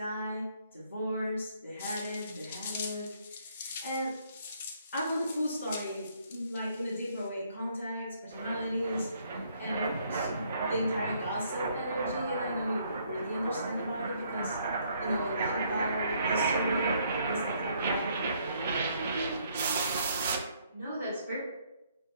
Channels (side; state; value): both; inverted; correlation -0.68